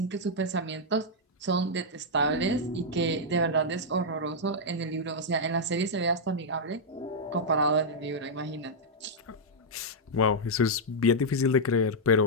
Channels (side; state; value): both; normal; correlation -0.06